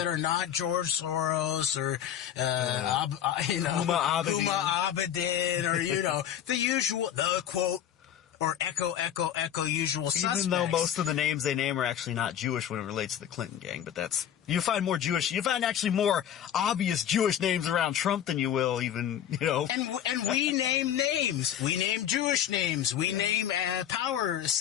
are not George Soros or, Huma Abedin or, the usual, the quote, or echo usual suspects. Even though most of the names they name are actually not Jewish when it relates to the Clinton gang, but you find actually more obvious Jewish names around Trump than you will even, And we name names. We name Jewish names. We name power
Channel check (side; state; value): right; quieter; 10.1 dB